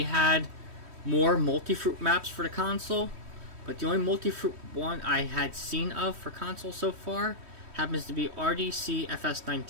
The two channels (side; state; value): left; late; 3.1 ms